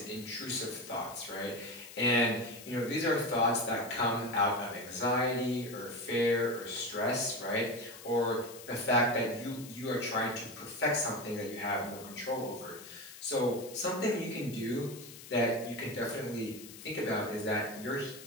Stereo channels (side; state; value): left; noise; hiss, 16 dB below the sound